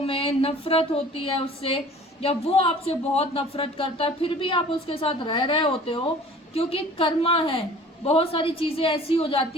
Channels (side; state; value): both; normal; correlation 0.47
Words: में नफरत होती है उससे, या वो आपसे बहुत नफरत करता है, फिर भी आप उसके साथ रह रहे होते हो क्योंकि कर्मा है। बहुत सारी चीज़ें ऐसी हो